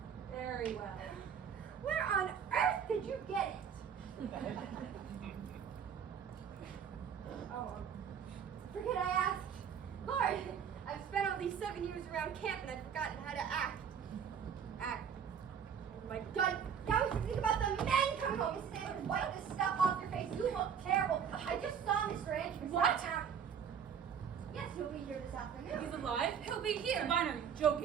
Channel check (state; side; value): quieter; left; 7.7 dB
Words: Very well. Where on earth did you get it? Oh, forget I asked. Lord, I've spent all these 7 years around camp and I've forgotten how to act. Act. Oh my God. Now we should think about the men coming home. Mrs. Anderson, wipe this stuff off your face. You look terrible. I just saw Mr. Andrews. What? Yes, he'll be here this afternoon. He's alive? He'll be here. Sabina, are you